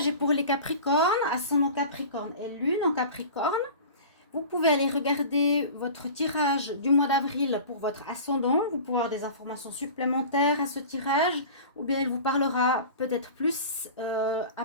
est pour les Capricornes, ascendant Capricorne et lune en Capricorne. Vous pouvez aller regarder votre tirage du mois d'avril pour votre ascendant, vous pouvez avoir des informations supplémentaires à ce tirage, ou bien il vous parlera peut-être plus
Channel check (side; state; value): both; inverted; correlation -0.37